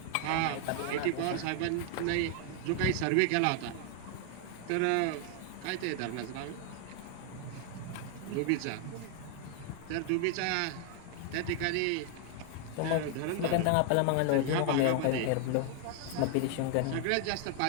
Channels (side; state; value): both; different; correlation 0.00